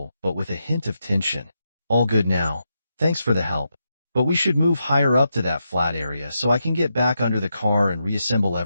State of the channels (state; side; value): inverted; both; correlation -0.85